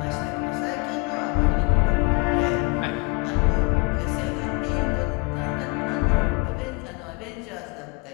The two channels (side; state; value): right; quieter; 29.9 dB